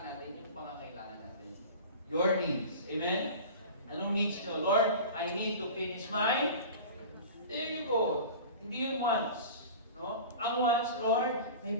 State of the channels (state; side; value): inverted; both; correlation -0.36